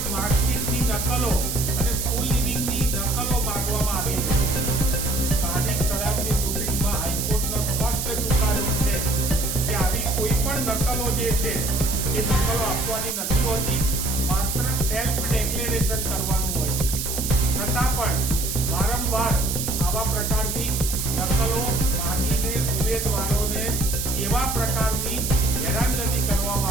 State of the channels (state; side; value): noise; right; hiss, 3 dB below the sound